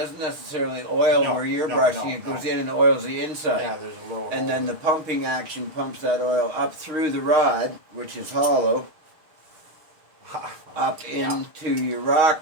necessarily oil No, where you're no, brushing. no, It goes no. in and oils the inside. Yeah, there's a little. And then hole the pumping action pumps that oil up through the rod, which is hollow, there. up Yeah. into your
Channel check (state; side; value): late; left; 6.4 ms